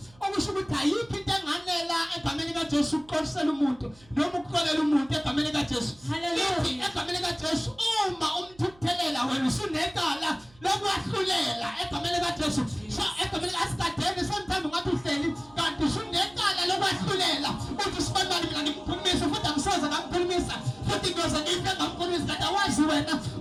okusho ukuthi ayikho into enganela egameni kaJesu ukuqolisela umuntu noma ukuxolela umuntu egameni kaJesu lithi egameni kaJesu uma umthukuthelela wena usunecala lokwahlulela egameni kaJesu so egameni asikadeni sometimes ngathi uhleli kanti usunecala lokwahlulela uthi sibanibani mina ngimkhulumisa futhi angisoze ngamkhulumisa futhi ngoze ngife ngamkhulumisa kanti awazi wena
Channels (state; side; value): noise; right; hum, 26 dB below the sound